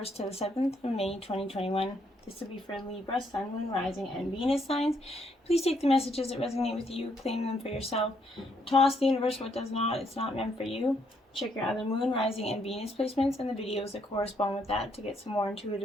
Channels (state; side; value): normal; both; correlation 0.73